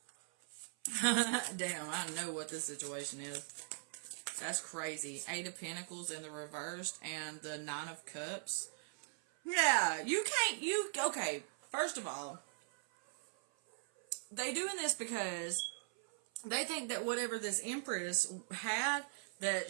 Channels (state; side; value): silent; left; 51 dB below the other